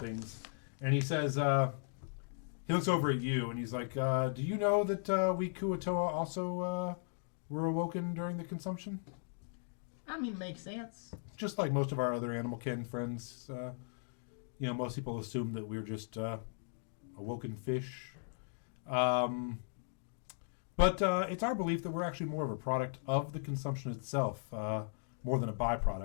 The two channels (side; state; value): right; silent; digital silence